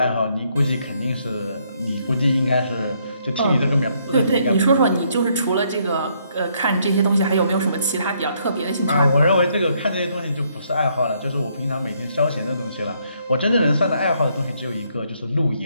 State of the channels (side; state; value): both; inverted; correlation -0.71